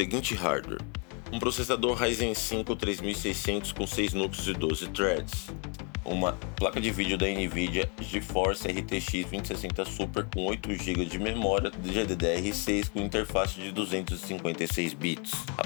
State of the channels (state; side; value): quieter; right; 36.0 dB